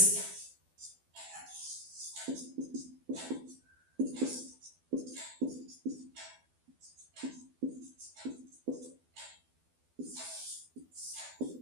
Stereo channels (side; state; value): left; late; 12 ms